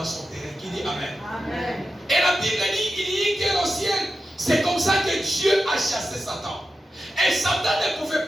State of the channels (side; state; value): both; normal; correlation 0.91